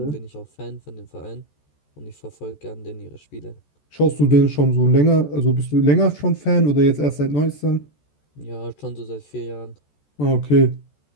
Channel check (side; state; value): right; late; 14 ms